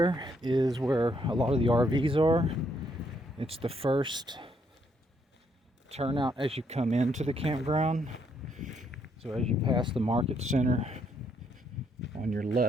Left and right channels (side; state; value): both; normal; correlation 0.73